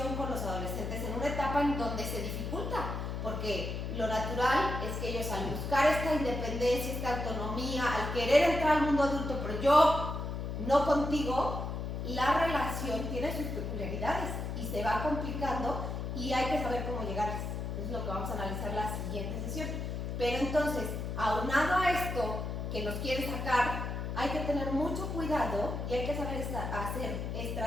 con los adolescentes en una etapa en donde se dificulta, porque lo natural es que ellos, al buscar esta independencia, esta autonomía, al querer entrar al mundo adulto, pero yo no contigo, la relación tiene sus peculiaridades y se va complicando y hay que saber cómo llegarles. Es lo que vamos a analizar la siguiente sesión. Pero entonces, aunado a esto que nos quiere sacar, hay que tener mucho cuidado y hay que saber hacer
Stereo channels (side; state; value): left; noise; hum, 4 dB below the sound